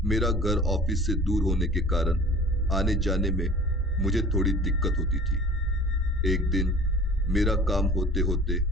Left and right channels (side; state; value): both; normal; correlation 0.44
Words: मेरा घर ऑफिस से दूर होने के कारण आने जाने में मुझे थोड़ी दिक्कत होती थी। एक दिन मेरा काम होते होते